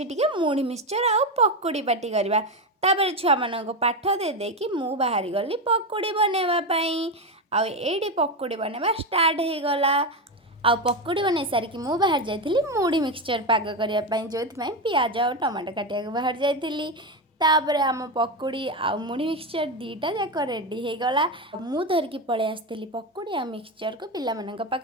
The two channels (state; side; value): normal; both; correlation 0.13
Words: टिके मुढ़ी मिक्सचर आ पकोड़ी पार्टी करबा तापर छुआ मानको पाठ दे दे कि मु बाहरी गली पकोड़ी बनेवा पई आ एडी पकोड़ी बनेवा स्टार्ट हे गला आ पकोड़ी बनै सारिकी मु बाहर जाइथिली मुढ़ी मिक्सचर पाग करिया पई जोथि पियाज आ टमाटो काटिया बाहर जाइथिली तापरे आम पकोड़ी आ मुढ़ी मिक्सचर दीटा जाक रेडी हो गला मु धरिकी पळे आसथिली पकोड़ी आ मिक्सचर को पिला मनक